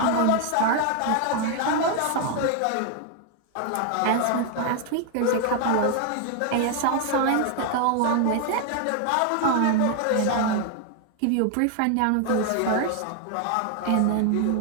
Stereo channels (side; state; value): both; different; correlation 0.00